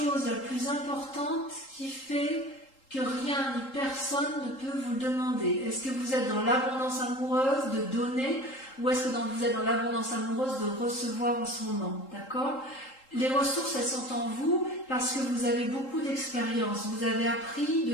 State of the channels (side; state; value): right; late; 3.8 ms